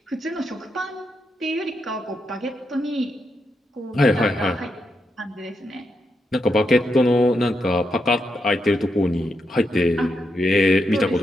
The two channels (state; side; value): normal; both; correlation 0.83